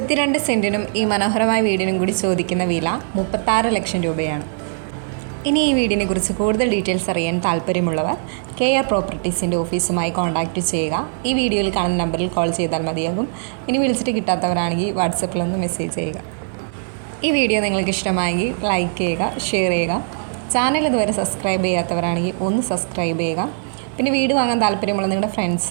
സെൻറ്റിനും ഈ മനോഹരമായ വീടിനും കൂടി ചോദിക്കുന്ന വില 36 ലക്ഷം രൂപയാണ്. ഇനി ഈ വീടിനെ കുറിച്ച് കൂടുതൽ ഡീറ്റെയിൽസ് അറിയാൻ താല്പര്യമുള്ളവർ കെയർ പ്രോപ്പർട്ടീസിൻ്റെ ഓഫീസുമായി കോൺടാക്റ്റ് ചെയ്യുക. ഈ വീഡിയോയിൽ കാണുന്ന നമ്പറിൽ കോൾ ചെയ്താൽ മതിയാകും. ഇനി വിളിച്ചിട്ട് കിട്ടാത്തവരാണെങ്കിൽ വാട്സപ്പിലൊന്ന് മെസ്സേജ് ചെയ്യുക. ഈ വീഡിയോ നിങ്ങൾക്ക് ഇഷ്ടമായെങ്കിൽ ലൈക്ക് ചെയ്യുക, ഷെയർ ചെയ്യുക. ചാനൽ ഇതുവരെ സബ്സ്ക്രൈബ് ചെയ്യാത്തവരാണെങ്കിൽ ഒന്ന് സബ്സ്ക്രൈബ് ചെയ്യുക. പിന്നെ വീട് വാങ്ങാൻ താല്പര്യമുള്ള നിങ്ങളുടെ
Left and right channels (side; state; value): left; silent; digital silence